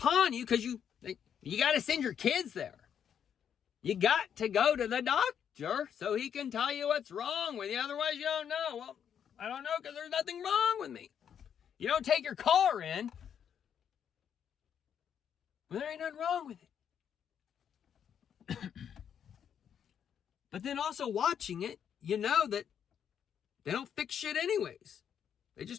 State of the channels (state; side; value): quieter; right; 8.4 dB